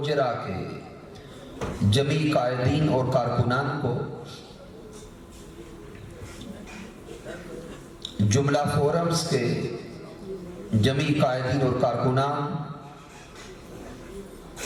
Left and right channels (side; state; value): both; identical; correlation 1.00